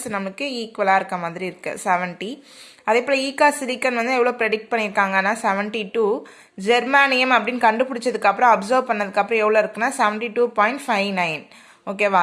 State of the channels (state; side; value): identical; both; correlation 1.00